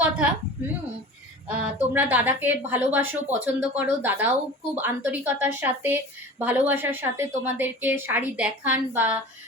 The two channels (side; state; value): both; normal; correlation 0.37